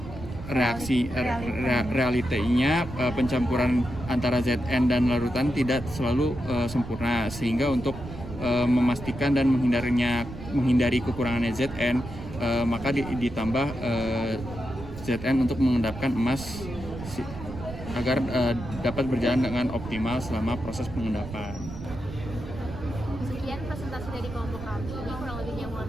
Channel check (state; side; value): noise; right; rumble, 11 dB below the sound